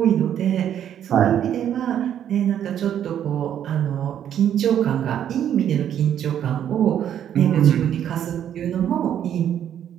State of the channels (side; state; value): left; quieter; 9.9 dB